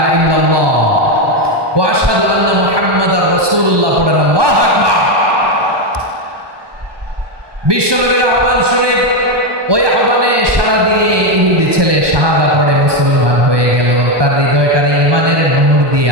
ইল্লাল্লাহ ওয়া আশহাদু আন্না মুহাম্মাদার রাসূলুল্লাহ, পড়েন আল্লাহু আকবার। বিশ্বনবীর আহ্বান শুনে ওই আহ্বানে সাড়া দিয়ে ইহুদি ছেলে শাহাদা পড়ে মুসলমান হয়ে গেল। তার হৃদয়টারে ঈমানের নূর দিয়ে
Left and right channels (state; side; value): late; left; 1.2 ms